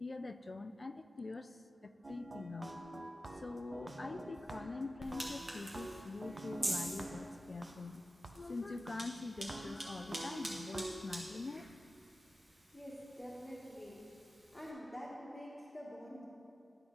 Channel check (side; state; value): both; normal; correlation 0.94